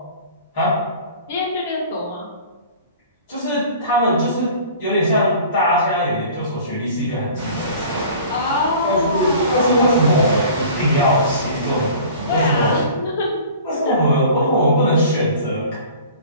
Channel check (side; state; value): both; inverted; correlation -0.44